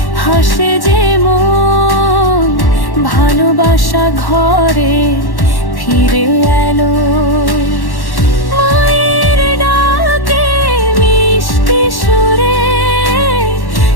হাসে যে মন, ভালোবাসা ঘরে ফিরে এলো। মায়ের ডাকে মিষ্টি সুরে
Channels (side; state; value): right; late; 1.1 ms